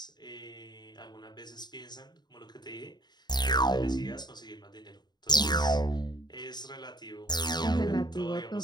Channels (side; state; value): right; late; 0.20 ms